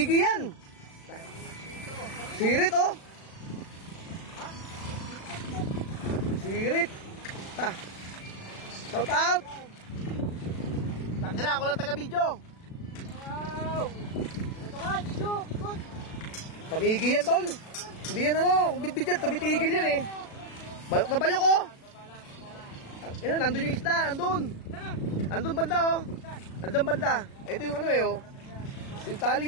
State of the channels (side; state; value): right; late; 36 ms